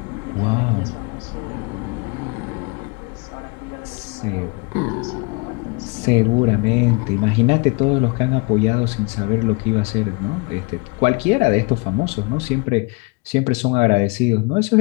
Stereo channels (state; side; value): quieter; right; 29.2 dB